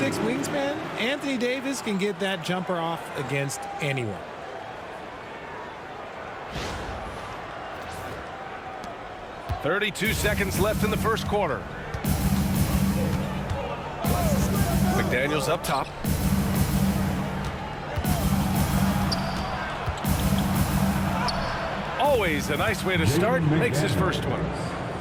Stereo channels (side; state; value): both; identical; correlation 1.00